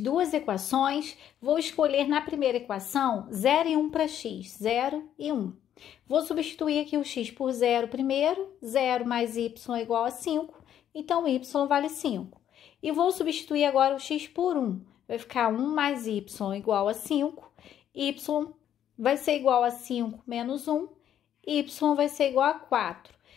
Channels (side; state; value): right; quieter; 10.3 dB